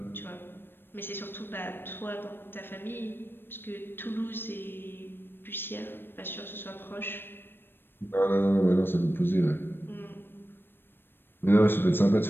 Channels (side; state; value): right; late; 0.099 ms